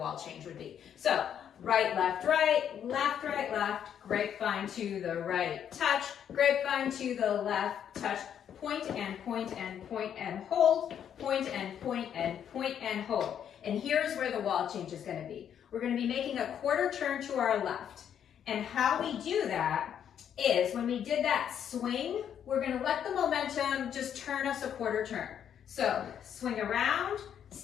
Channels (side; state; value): right; quieter; 9.0 dB